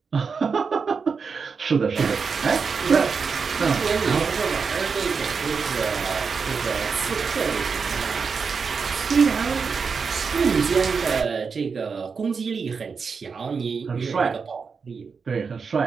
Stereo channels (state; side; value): quieter; left; 5.4 dB